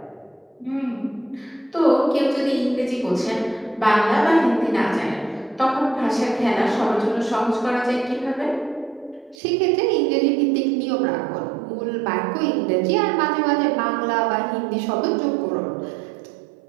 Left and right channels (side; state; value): left; drops out; at 9.3 s